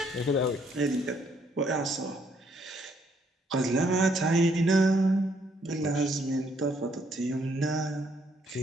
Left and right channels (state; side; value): normal; both; correlation 0.70